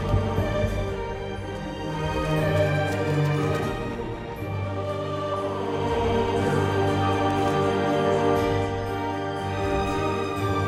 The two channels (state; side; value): identical; both; correlation 1.00